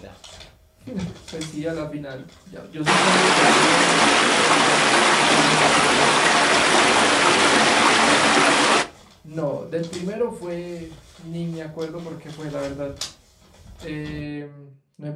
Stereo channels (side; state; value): both; identical; correlation 1.00